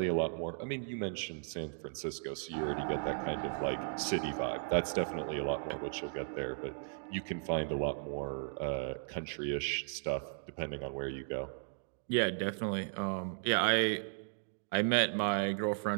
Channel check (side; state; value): left; silent; digital silence